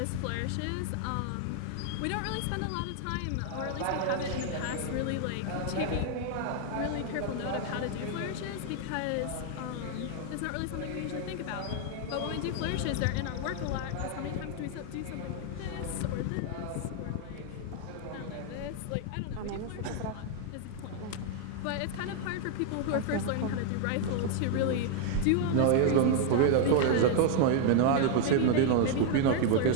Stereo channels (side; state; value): both; different; correlation 0.00